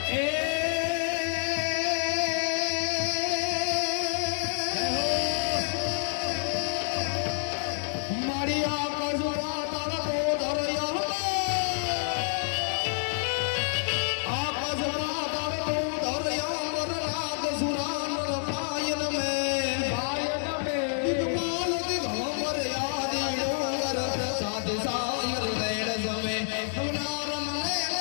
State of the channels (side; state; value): right; silent; 59 dB below the other